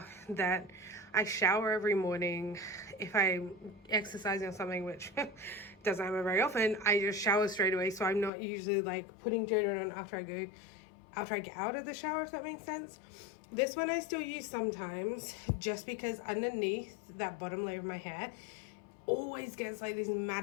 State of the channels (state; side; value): drops out; right; at 8.3 s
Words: that I shower every morning. If I'm exercising or something, which doesn't happen very often, I just shower straight away. So I'm not usually like putting deodorant on after I get out of the shower, if that makes sense. This one I still use sometimes, just because underneath that bottom layer of my hair always gets like these